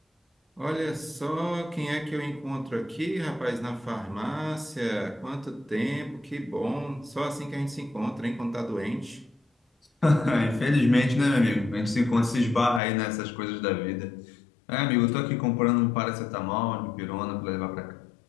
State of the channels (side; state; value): right; drops out; at 12.8 s